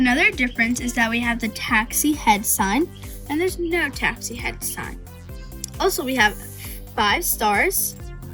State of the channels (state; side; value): identical; both; correlation 1.00